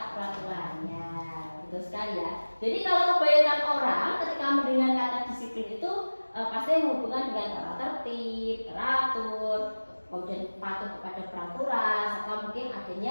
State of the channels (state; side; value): inverted; both; correlation -1.00